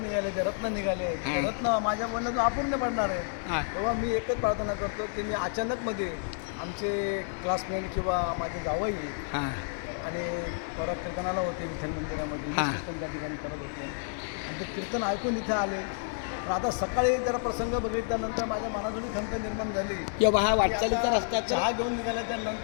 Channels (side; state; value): right; silent; digital silence